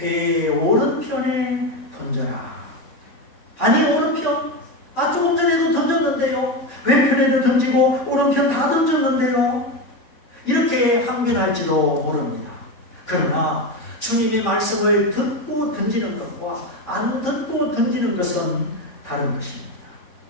오른편에 던져라. 아니 오른편? 조금 전에도 던졌는데요. 왼편에도 던지고 오른편 다 던졌는데요. 이렇게 항변할지도 모릅니다. 그러나 주님의 말씀을 듣고 던지는 것과 안 듣고 던지는 것은 다른 것입니다.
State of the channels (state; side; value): late; right; 3.8 ms